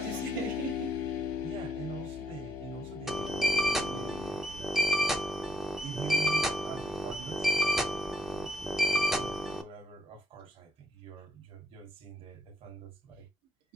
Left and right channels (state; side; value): normal; both; correlation 0.73